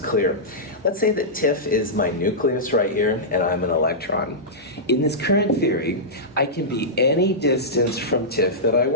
Let's say that TIFF is my nucleus right here, and I'm an electron. In this current theory, I can be any distance from TIFF that I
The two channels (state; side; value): normal; both; correlation -0.13